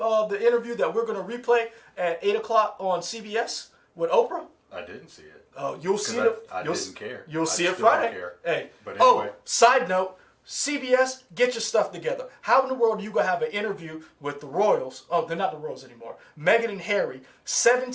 interview that we're going to replay at 8 o'clock on CBS with Oprah? I didn't see it. You'll see it. I didn't care. You'll see it still don't Friday. care. Hey. But anyway. Side note, CBS, get your stuff together. How in the world are you going to have an interview with the Royals? Oh, they're not the Royals anymore. Meghan and Harry.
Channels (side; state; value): both; identical; correlation 1.00